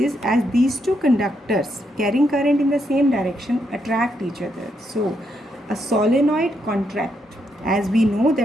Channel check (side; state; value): both; normal; correlation 0.78